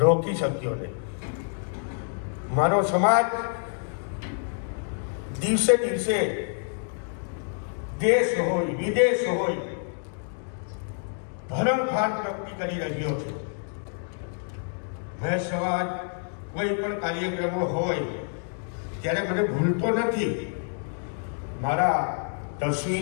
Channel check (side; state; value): right; silent; 60 dB below the other